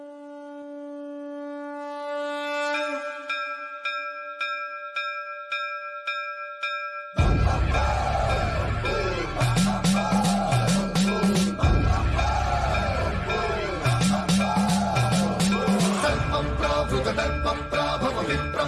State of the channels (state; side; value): identical; both; correlation 1.00